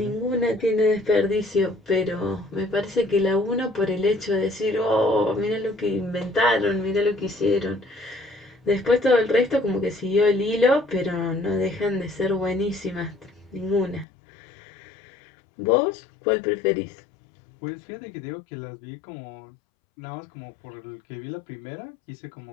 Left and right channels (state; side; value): drops out; right; at 14.1 s